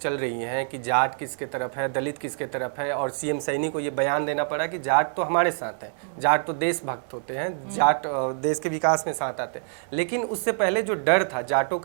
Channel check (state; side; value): silent; left; digital silence